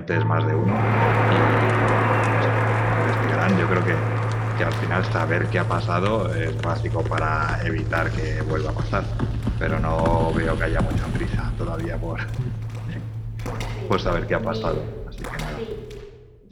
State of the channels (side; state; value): both; identical; correlation 1.00